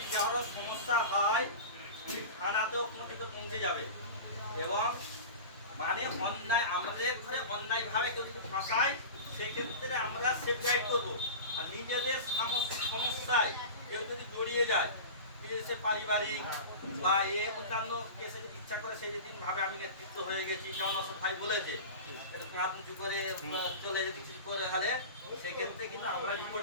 কারো সমস্যা হয় থানাতেও কিন্তু পৌঁছে যাবে। এবং মানে অন্যায় আমাদের ঘরে অন্যায়ভাবে কেউ যদি ফাঁসায় সেক্ষেত্রে আমরা সেফ গাইড করবো। আর নিজেদের সমস্যায় কেউ যদি জড়িয়ে যায়, নিজেদের পারিবারিক বা অন্যান্য কেসে যদি ইচ্ছা করে সেই যেদিন ভাবে আমি নেতৃত্ব হয়ে গেছি, যেমন অসৎ ভাই বলেছে এটা তুমি হাত উঁচু করে চলে যেতে কিছু করে গেলে সেক্ষেত্রে কিন্তু আমরা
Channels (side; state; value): both; inverted; correlation -0.31